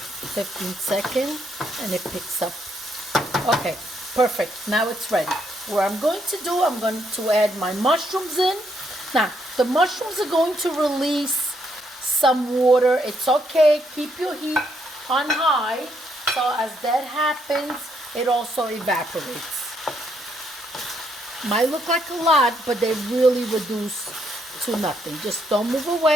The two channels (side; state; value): both; normal; correlation 0.74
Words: seconds and it picks up. Okay, perfect. Now it's ready. What I'm going to do, I'm going to add my mushrooms in. Now, the mushrooms are going to release some water. It's okay. Keep your heat on high. So as that happens, it also evaporates. Might look like a lot, but they really reduce to nothing. Just don't move